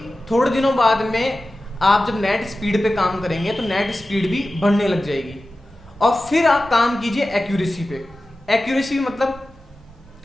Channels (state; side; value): normal; both; correlation 0.95